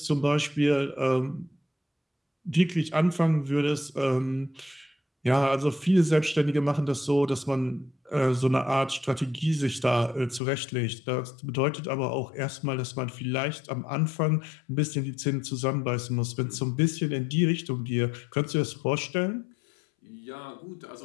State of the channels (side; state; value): right; drops out; at 10.4 s